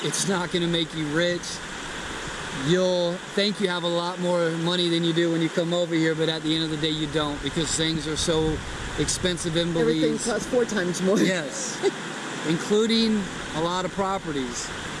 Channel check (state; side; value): identical; both; correlation 1.00